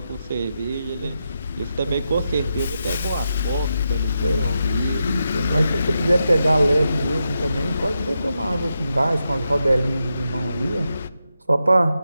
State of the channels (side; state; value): both; inverted; correlation -0.86